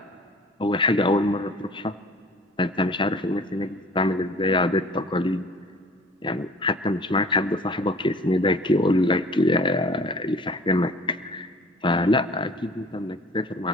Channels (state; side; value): normal; both; correlation 0.47